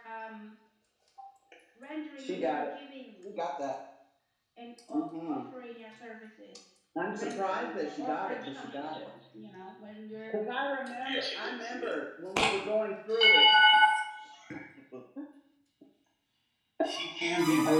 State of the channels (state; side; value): identical; both; correlation 1.00